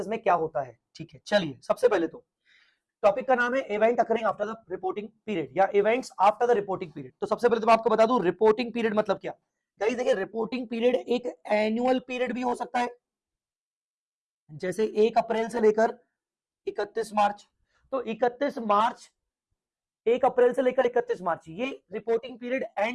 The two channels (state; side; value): identical; both; correlation 1.00